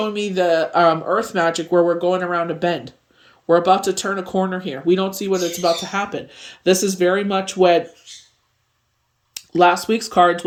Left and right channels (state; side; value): identical; both; correlation 1.00